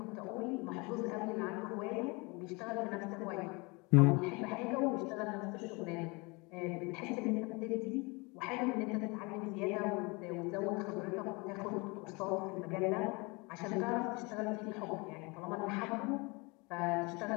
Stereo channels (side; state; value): right; quieter; 27.6 dB